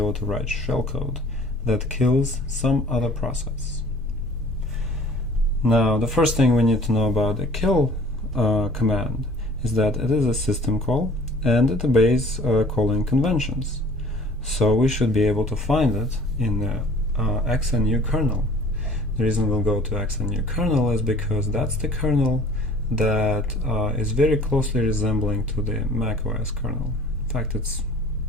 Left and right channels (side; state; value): both; normal; correlation 0.50